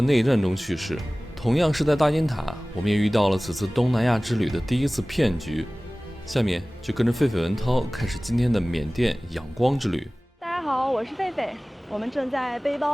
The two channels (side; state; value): both; normal; correlation 0.98